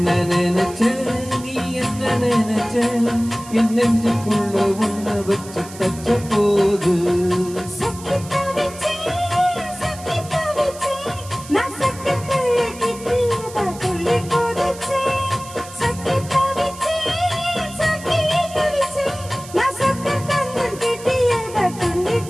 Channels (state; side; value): noise; right; hiss, 16 dB below the sound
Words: நினைச்ச நீ என்ன நினைச்ச என் நெஞ்சுக்குள்ள ஒண்ணு வச்சு தச்ச போது